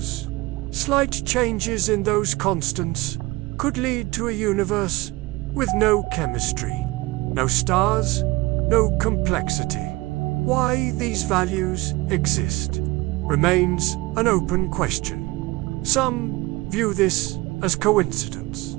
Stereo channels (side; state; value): left; quieter; 21.4 dB